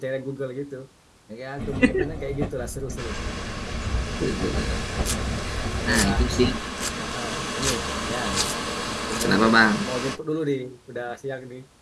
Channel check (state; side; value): identical; both; correlation 1.00